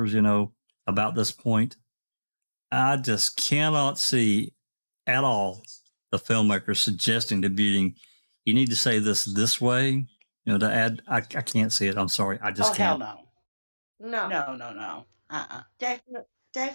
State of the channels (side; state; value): both; inverted; correlation -1.00